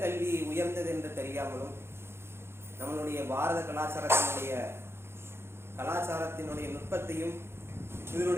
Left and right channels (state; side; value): late; left; 0.12 ms